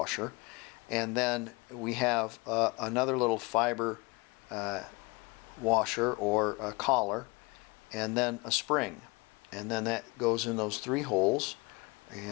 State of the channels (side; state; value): right; quieter; 26.5 dB